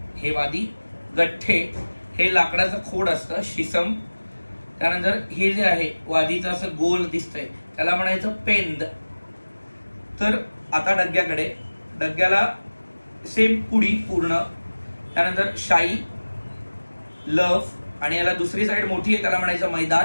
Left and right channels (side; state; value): both; inverted; correlation -1.00